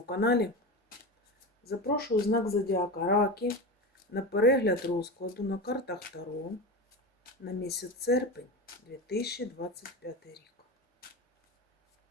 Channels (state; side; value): normal; both; correlation 0.24